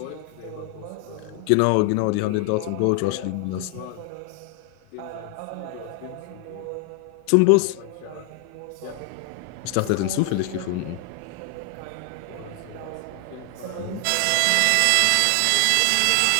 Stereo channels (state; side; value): different; both; correlation 0.00